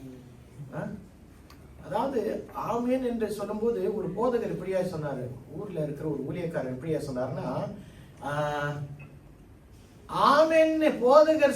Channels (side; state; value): both; identical; correlation 1.00